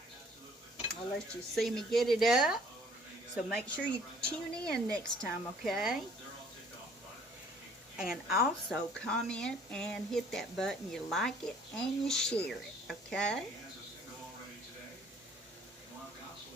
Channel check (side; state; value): both; normal; correlation 0.57